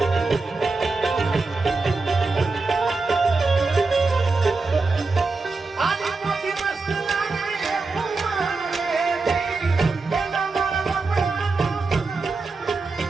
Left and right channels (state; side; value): quieter; left; 3.9 dB